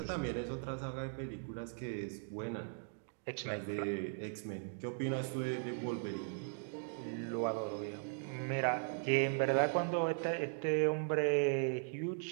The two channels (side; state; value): left; silent; digital silence